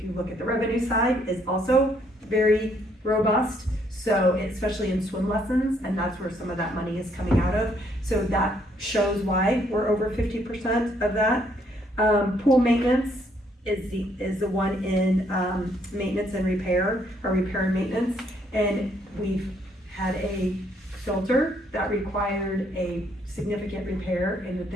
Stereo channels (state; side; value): normal; both; correlation 0.69